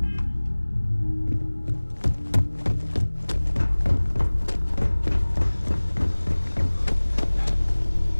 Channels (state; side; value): inverted; both; correlation -1.00